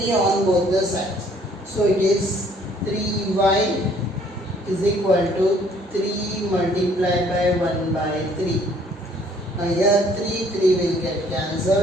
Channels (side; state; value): both; normal; correlation 0.60